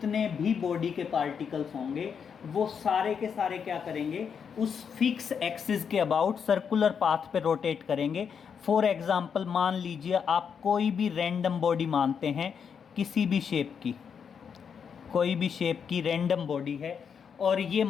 भी बॉडी के पार्टिकल्स होंगे वो सारे के सारे क्या करेंगे, उस फिक्स एक्सिस के अबाउट सर्कुलर पाथ पे रोटेट करेंगे। फॉर एग्जांपल मान लीजिए आप कोई भी रैंडम बॉडी मानते हैं, किसी भी शेप की, कोई भी शेप की रैंडम बॉडी है और ये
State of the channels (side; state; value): right; quieter; 6.9 dB